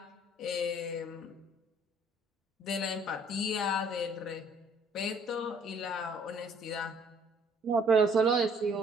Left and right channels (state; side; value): normal; both; correlation 0.60